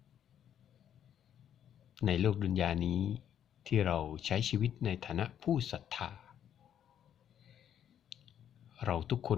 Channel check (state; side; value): quieter; right; 9.7 dB